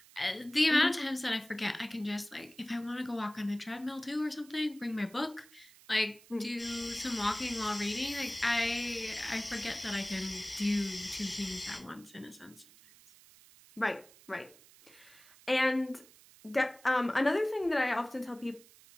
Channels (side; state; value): right; noise; hiss, 24 dB below the sound